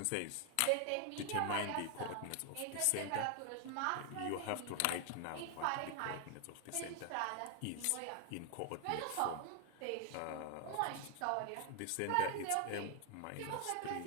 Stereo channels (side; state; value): both; different; correlation 0.00